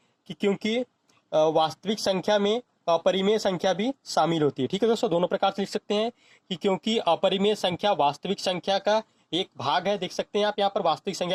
कि क्योंकि वास्तविक संख्या में अपरिमेय संख्या भी शामिल होती है। ठीक है दोस्तों, दोनों प्रकार से लिख सकते हैं कि क्योंकि अपरिमेय संख्या वास्तविक संख्या का एक भाग है। देख सकते हैं आप यहाँ पर वास्तविक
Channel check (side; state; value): both; identical; correlation 1.00